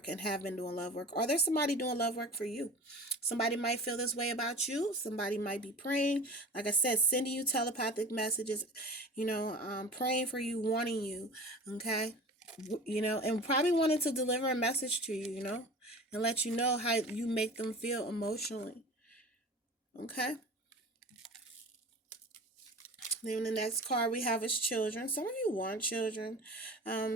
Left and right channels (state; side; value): normal; both; correlation 0.37